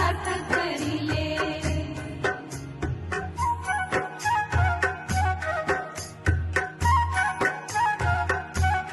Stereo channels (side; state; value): both; identical; correlation 1.00